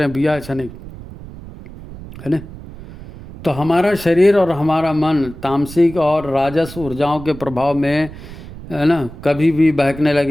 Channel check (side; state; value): right; noise; rumble, 15 dB below the sound